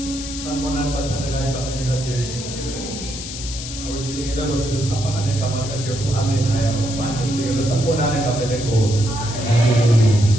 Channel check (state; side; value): noise; left; hiss, 9 dB below the sound